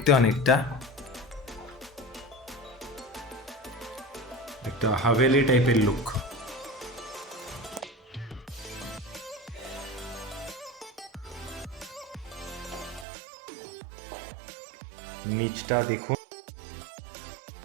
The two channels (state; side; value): drops out; left; at 13.1 s